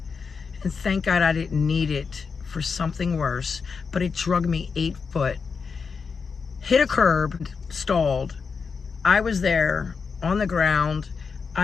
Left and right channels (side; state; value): right; quieter; 5.4 dB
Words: and thank God I didn't need it for something worse, but it dragged me 8 foot. Hit a curb, stalled. I was there on the ground.